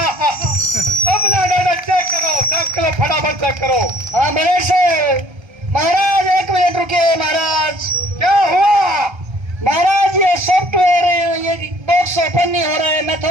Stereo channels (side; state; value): left; late; 1.3 ms